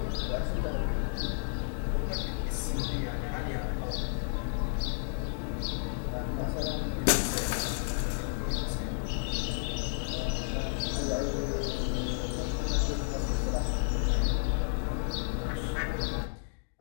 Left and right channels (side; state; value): right; silent; digital silence